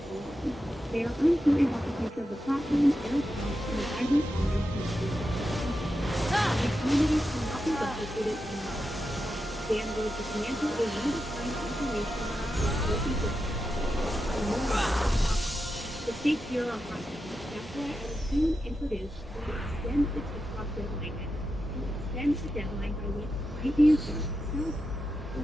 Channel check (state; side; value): normal; both; correlation 0.89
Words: alarmed. They are uncertain about the future of the platform, their accounts, and the vibrant commerce and community. These communities cannot be replicated anymore. Dan was the financial or undefined information for the stakes here are high. That's why I will soon introduce to extend the TikTok deadline by which might be a self